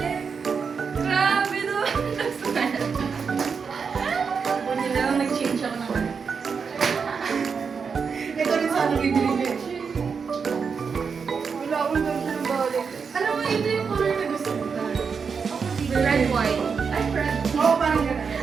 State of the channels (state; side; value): quieter; left; 5.8 dB